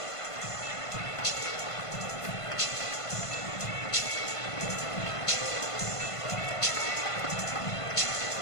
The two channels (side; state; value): right; late; 1.5 ms